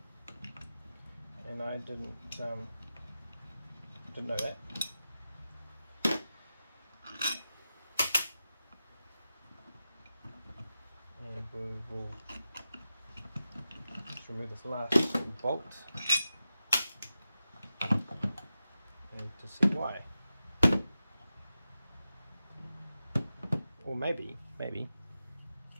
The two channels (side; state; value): both; inverted; correlation -0.92